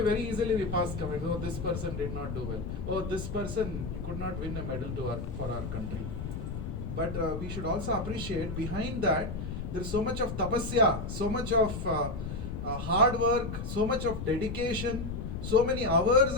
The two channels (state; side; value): noise; left; rumble, 5 dB below the sound